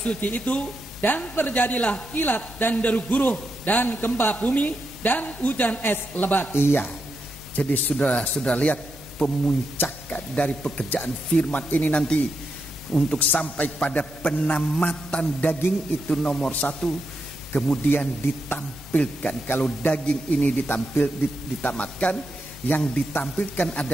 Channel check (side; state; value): both; normal; correlation 0.84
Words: itu. Dan terjadilah kilat dan deru guruh dan gempa bumi dan hujan es lebat. Iya. Jadi sudah lihat pemuncakan dari pekerjaan firman ini nanti untuk sampai pada penamatan daging itu nomor 1. Kemudian ditampilkan, kalau daging ini ditamatkan, yang ditampilkan